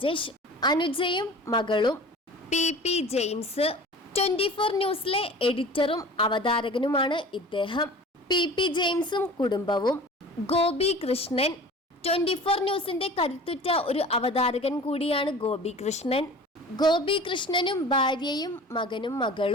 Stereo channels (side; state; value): both; normal; correlation 0.41